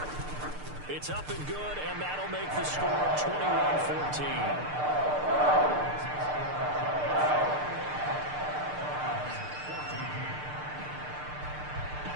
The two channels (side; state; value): left; late; 6.7 ms